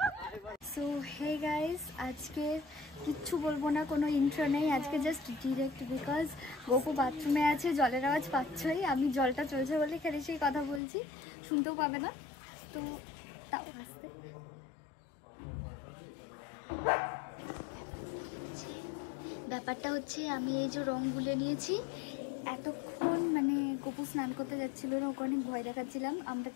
সো হে গাইস, আজকে কিচ্ছু বলবো না, কোনো ইন্ট্রো নেই আজকে, জাস্ট ডিরেক্ট বিকজ গোপু বাথরুমে আছে, জলের আওয়াজ পাচ্ছই, আমি জলটা চলছে বলে খেলে সেই কথা বলছি, শুনতেও পাবে না, তো তাও আসতে। ব্যাপারটা হচ্ছে আমি এই যে রং গুলে নিয়েছি, এতক্ষণ মানে গোপু স্নান করতে যাচ্ছিল না, ওকে অনেক ভয় দেখাচ্ছিলাম আমরা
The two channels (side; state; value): right; drops out; at 10.8 s